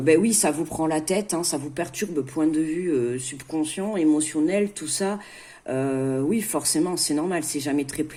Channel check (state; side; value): identical; both; correlation 1.00